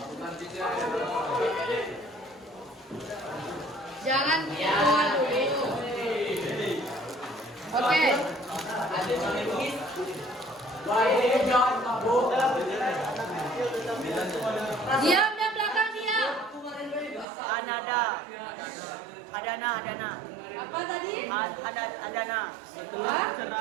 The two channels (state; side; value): drops out; left; at 17.2 s